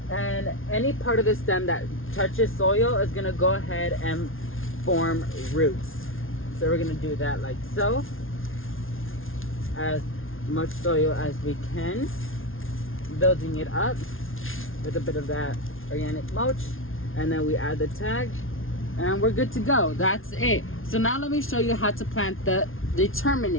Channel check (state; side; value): late; right; 0.60 ms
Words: And any part of the stem that touches soil is gonna go ahead and form roots. So we're gonna do that like so. As much soil as we can. Building it up with a bit of that organic mulch. And then we add the tag. And we're good to go. That's it. So now let me show you how to plant the